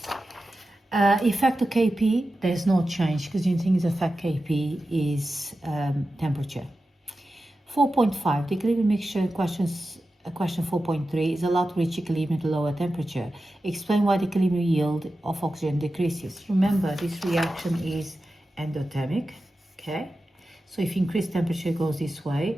Effect of Kp, there's no change because the only thing is effect Kp is temperature. 4.5, the equilibrium mixture question 4.3 is allowed to reach equilibrium at a lower temperature. Explain why the equilibrium yield of oxygen decreases. Remember, this reaction is endothermic, okay? So if you increase temperature, it goes this way.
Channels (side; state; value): both; normal; correlation 0.92